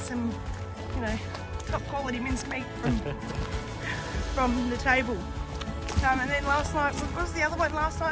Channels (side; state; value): both; identical; correlation 1.00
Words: some, you know, top quality mincemeat from the table. And then last night, what was the other one last